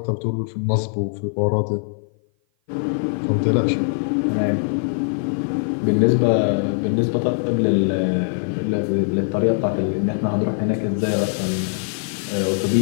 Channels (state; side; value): silent; right; 56 dB below the other